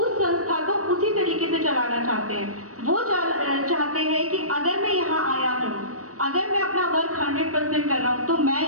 उस संस्था को उसी तरीके से चलाना चाहते हैं। वो चाहते हैं कि अगर मैं यहाँ आया हूँ, अगर मैं अपना वर्क 100% कर रहा हूँ तो मैं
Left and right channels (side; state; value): left; late; 0.65 ms